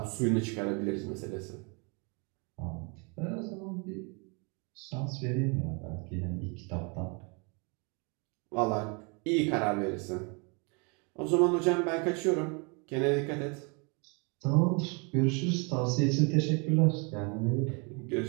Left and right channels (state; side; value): quieter; left; 33.0 dB